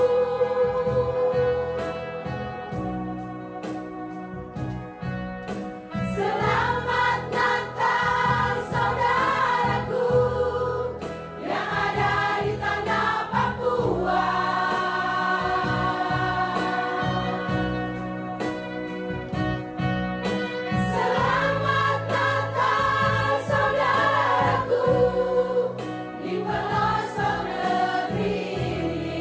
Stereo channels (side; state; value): both; identical; correlation 1.00